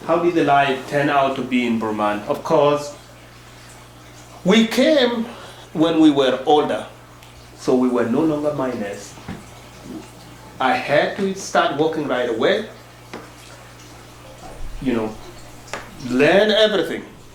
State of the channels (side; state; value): both; identical; correlation 1.00